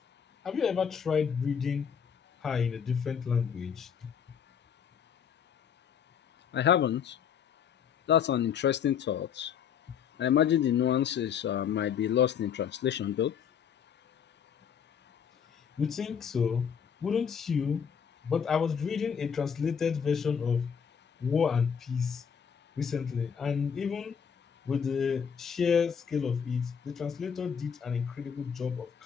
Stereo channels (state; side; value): quieter; right; 7.4 dB